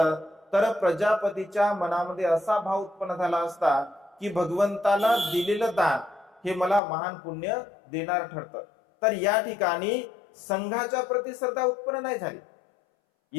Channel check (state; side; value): drops out; right; at 6.8 s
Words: तर प्रजापतीच्या मनामध्ये असा भाव उत्पन्न झाला असता की भगवंताला दिलेलं दान हे मला महान पुण्य देणार ठरतं. तर या ठिकाणी संघाच्या प्रती श्रद्धा उत्पन्न नाही झाली.